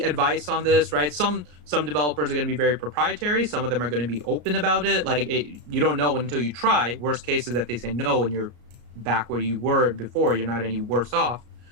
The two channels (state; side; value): late; left; 34 ms